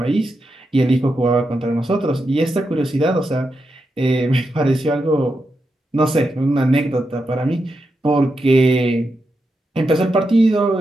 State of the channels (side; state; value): both; normal; correlation 0.86